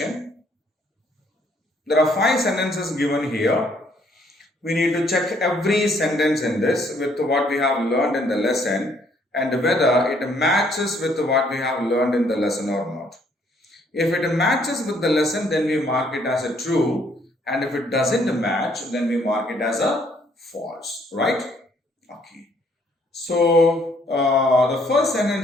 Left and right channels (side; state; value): both; normal; correlation 0.66